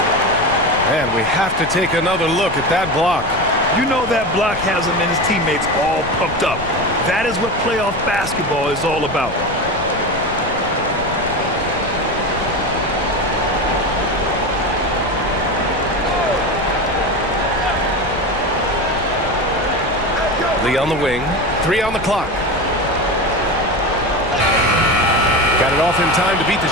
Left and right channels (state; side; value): noise; left; rumble, 12 dB below the sound